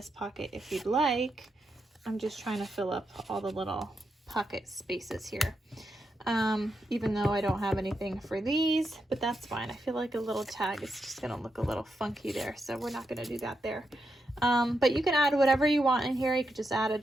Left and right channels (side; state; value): both; normal; correlation 0.84